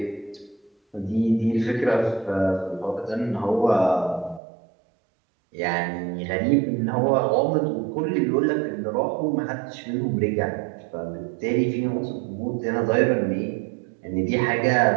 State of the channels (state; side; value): drops out; left; at 4.4 s